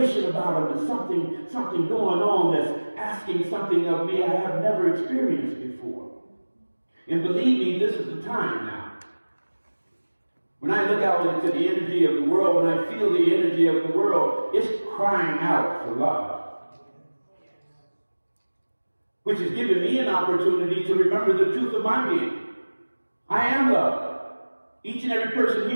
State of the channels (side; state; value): both; inverted; correlation -1.00